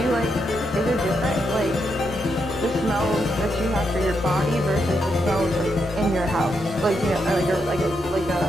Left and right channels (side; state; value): both; normal; correlation 0.81